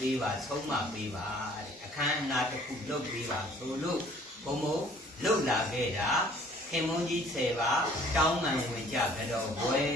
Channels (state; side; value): normal; both; correlation 0.55